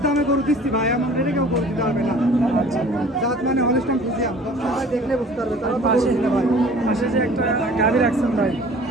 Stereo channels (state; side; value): normal; both; correlation 0.48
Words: দামে গরু দিচ্ছি ভাই, এমন রেটে কেউ গরু দিতে পারবে না। আচ্ছা, জাত মানে হলস্টাইন ফ্রিজিয়ান, দর্শক ভাই দেখলে বুঝতে পারবে তারা তো পাশে গরু কিনে ভাই। পাশে যে একটা গাভী রাখছেন ভাই,